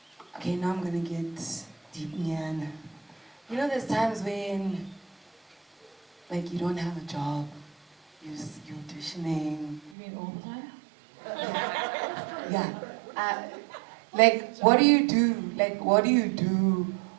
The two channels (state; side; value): drops out; left; at 9.9 s